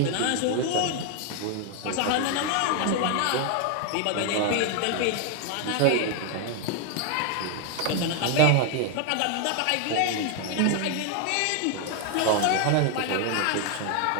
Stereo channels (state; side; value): different; both; correlation 0.01